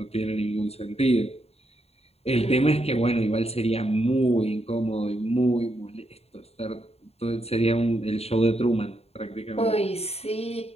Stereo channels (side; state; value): right; late; 0.30 ms